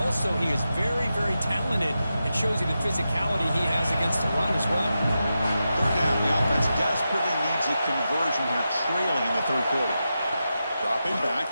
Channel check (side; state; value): both; inverted; correlation -0.89